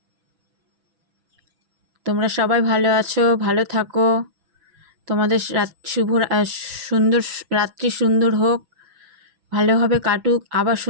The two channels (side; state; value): left; late; 6.1 ms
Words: তোমরা সবাই ভালো আছো, ভালো থাকো। তোমাদের সুন্দর রাত্রি সুন্দর হোক, ভালোভাবে কাটুক, আবার